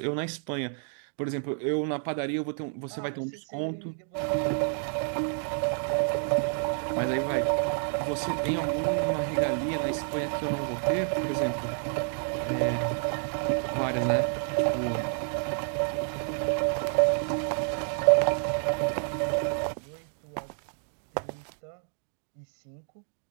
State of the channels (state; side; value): silent; left; 58 dB below the other